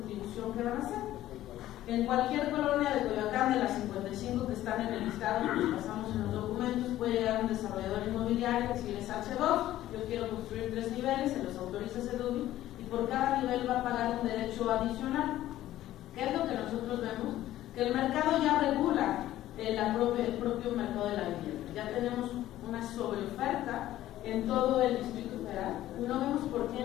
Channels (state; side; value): quieter; right; 14.0 dB